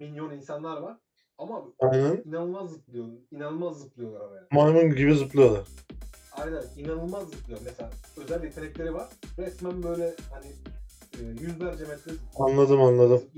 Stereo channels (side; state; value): both; identical; correlation 1.00